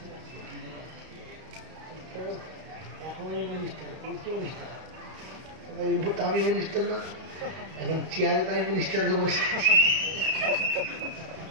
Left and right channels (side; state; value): left; late; 32 ms